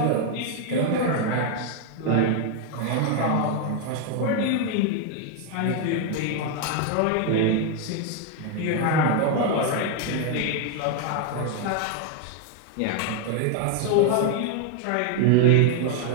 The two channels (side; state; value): both; different; correlation 0.01